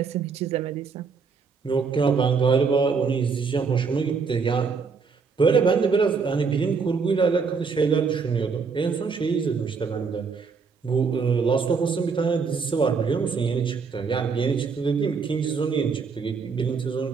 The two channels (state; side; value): quieter; left; 5.2 dB